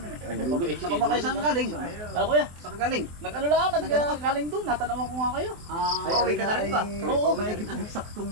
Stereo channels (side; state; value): left; late; 23 ms